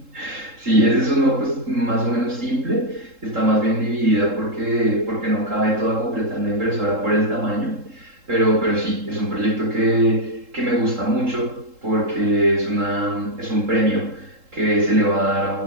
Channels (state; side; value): late; left; 3.7 ms